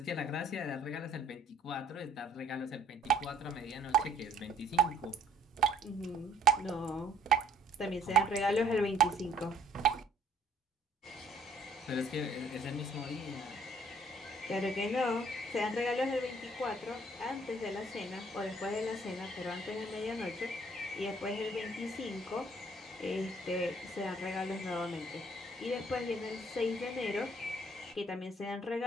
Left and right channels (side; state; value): both; normal; correlation 0.60